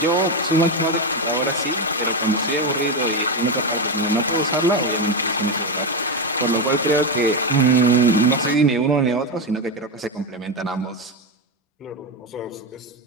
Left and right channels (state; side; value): normal; both; correlation 0.11